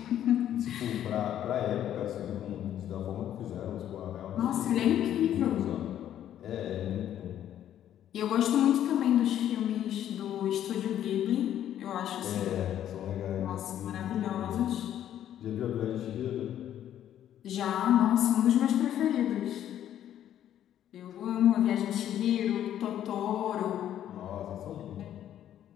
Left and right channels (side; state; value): right; quieter; 11.0 dB